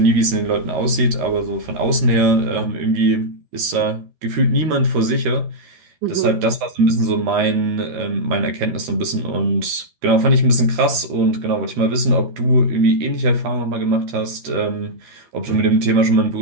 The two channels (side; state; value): left; late; 13 ms